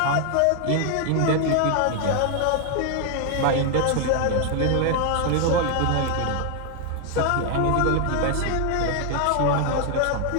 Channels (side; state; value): both; different; correlation 0.00